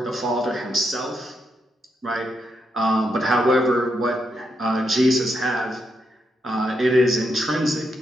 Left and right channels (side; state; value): both; normal; correlation 0.81